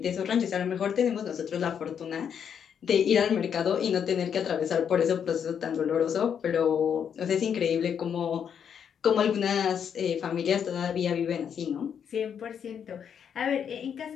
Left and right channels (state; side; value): quieter; right; 7.9 dB